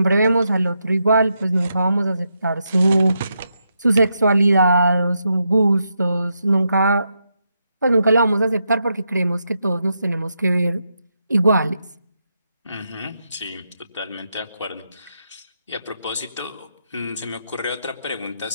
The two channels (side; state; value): both; inverted; correlation -0.83